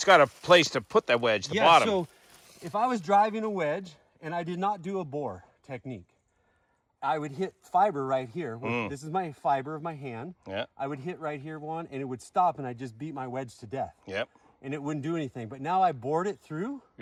a place to put that wedge, the bottom. So if I was driving a wedge and I did not do a bore technique, I would hit fiber right here. This is my fiber of my hand. Yeah. I would hit right here one and it would stop and I just beat my wedge to death. Yep. And it wouldn't do anything. But now I bored it through.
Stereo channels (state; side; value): identical; both; correlation 1.00